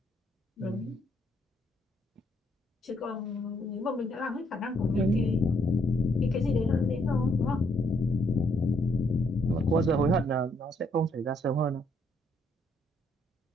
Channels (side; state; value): both; normal; correlation 0.71